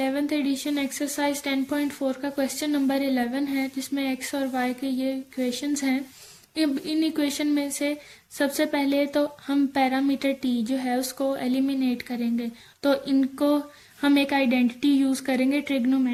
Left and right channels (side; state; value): both; identical; correlation 1.00